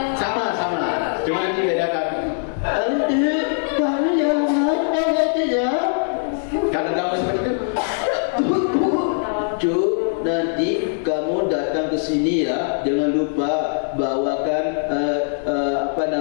sama. Cuma dibedakan. Kamu yang mana ya? Kalau nggak mau seperti itu, Cuk, nanti kamu datang ke sini ya, jangan lupa bawakan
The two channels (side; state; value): right; silent; digital silence